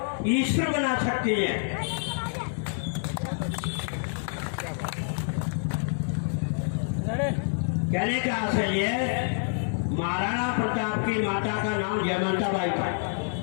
ईश्वर बना सकती है। कहने का आशय ये, महाराणा प्रताप की माता का नाम जयवंता बाई था।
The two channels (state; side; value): silent; right; digital silence